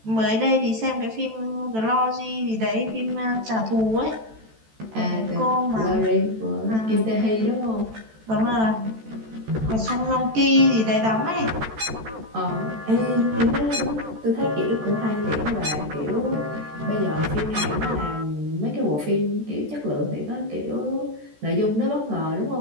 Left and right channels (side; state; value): left; late; 14 ms